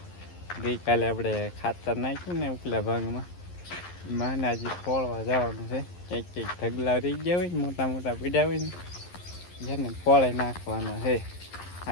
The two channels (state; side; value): late; right; 11 ms